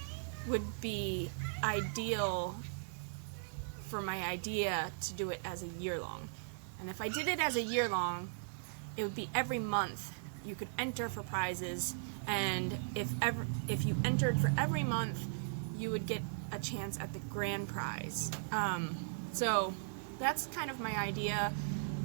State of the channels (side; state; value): left; silent; digital silence